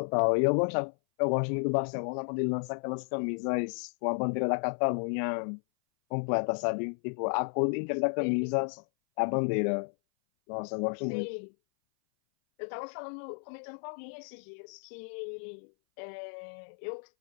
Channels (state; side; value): silent; right; 56 dB below the other